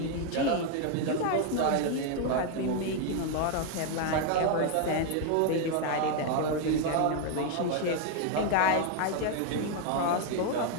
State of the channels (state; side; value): different; both; correlation 0.00